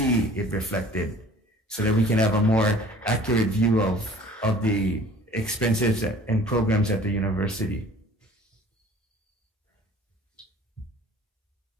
it reflected so that we can have a more accurate view of the expenses and programs at the university.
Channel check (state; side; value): normal; both; correlation 0.49